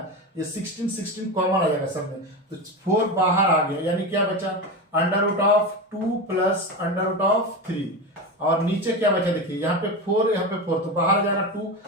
ये 16 16 कॉमन आ जाएगा सब में, तो 4 बाहर आ गया, यानी क्या बचा under root of 2 plus under root of 3, और नीचे क्या बचा देखिए यहाँ पे 4, यहाँ पे 4, तो बाहर आ जाएगा 2,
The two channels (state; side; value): normal; both; correlation 0.21